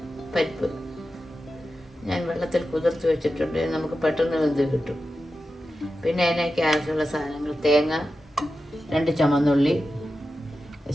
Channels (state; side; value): normal; both; correlation 0.91